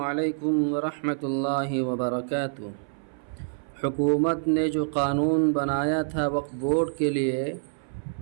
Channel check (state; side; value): silent; left; 58 dB below the other